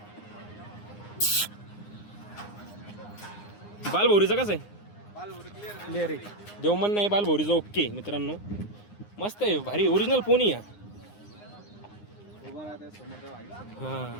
बालभौरीचं कसं आहे? क्लिअर आहे. देवमन नाही, बालभौरीचं ओके मित्रांनो. मस्त आहे, भारी ओरिजिनल पोनी या.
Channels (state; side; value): late; right; 9.7 ms